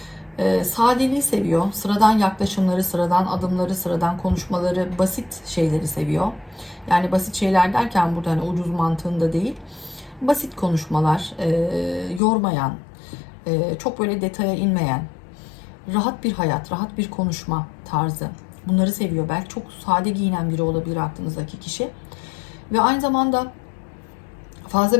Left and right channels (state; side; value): drops out; right; at 12.2 s